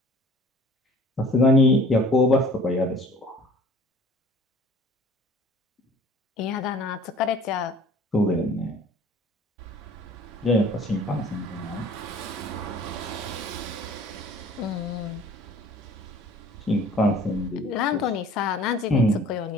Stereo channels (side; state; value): both; normal; correlation 0.50